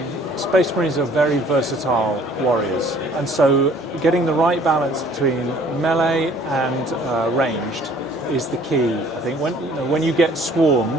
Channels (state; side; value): normal; both; correlation 0.55